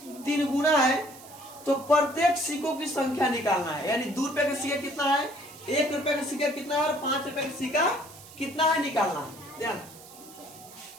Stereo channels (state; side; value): noise; right; hiss, 19 dB below the sound